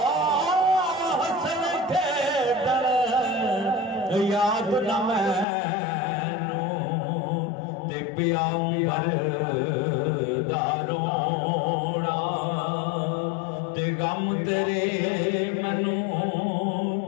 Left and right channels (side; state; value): right; drops out; at 5.5 s